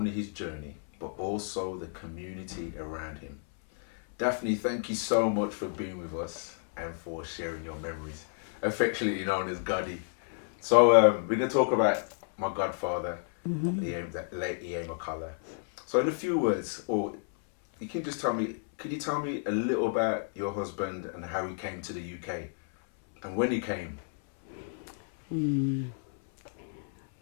his journey, but also the community around him. Daphne, thank you so much for being with us and for sharing your memories, affectionately known as Goddy. So we're going to talk about my godfather, the late E.A. McCalla. So in a few words, or you can just tell me, can you tell me a little about your husband and how he came to the UK and when he came?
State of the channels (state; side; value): silent; right; 57 dB below the other